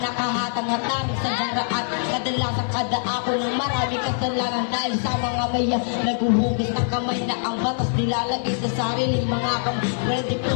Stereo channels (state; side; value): silent; right; digital silence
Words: nakahatang-hatang sa daraan. Kadalasan kada ako ng marami kasalanan dahil sa mga maya naguhugis ng kamay na ang batas nilalagay sa sariling mga kamay. Well, di